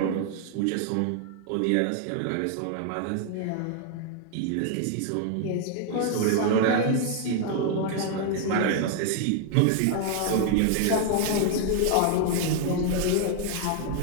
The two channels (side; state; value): both; different; correlation 0.00